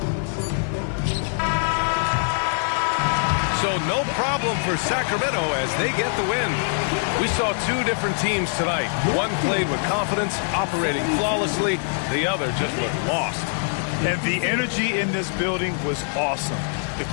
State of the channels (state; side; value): silent; right; 63 dB below the other